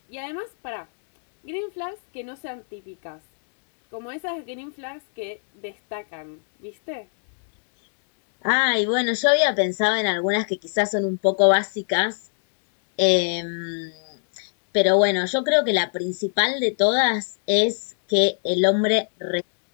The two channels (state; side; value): silent; right; 64 dB below the other